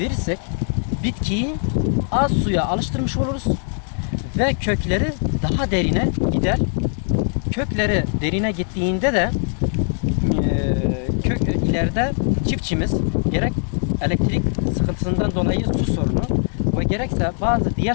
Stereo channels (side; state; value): right; silent; 59 dB below the other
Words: bitkiyi az suya alıştırmış oluruz ve kökleri daha derine gider. Kökleri derine gittiğinde de ileride çiftçimiz gerek elektrik sıkıntısından dolayı su sorunu ve gerekse bazı diğer